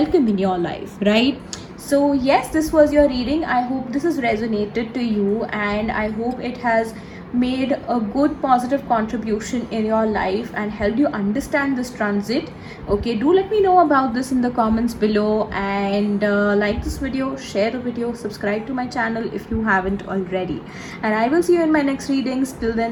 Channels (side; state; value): both; identical; correlation 1.00